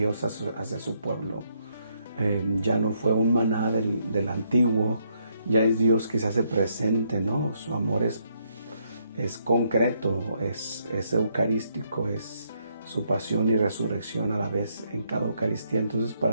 hacia su pueblo. Ya no fue un maná del antiguo, ya es Dios que se hace presente, ¿no? Su amor es concreto, es eucarístico, es su pasión y resurrección a la vez en cada Eucaristía. Entonces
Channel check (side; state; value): both; inverted; correlation -0.74